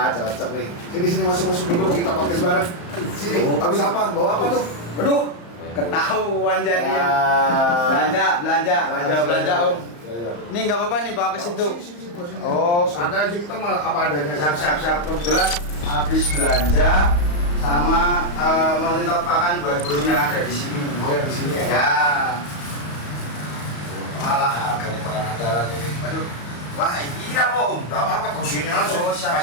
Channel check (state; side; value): late; right; 34 ms